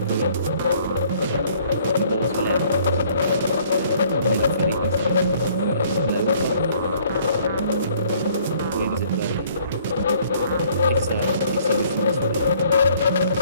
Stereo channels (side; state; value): both; inverted; correlation -0.59